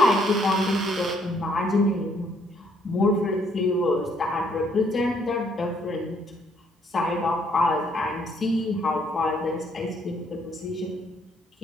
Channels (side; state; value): both; normal; correlation 0.68